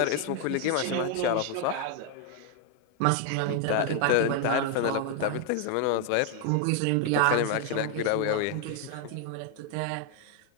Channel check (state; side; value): different; both; correlation 0.00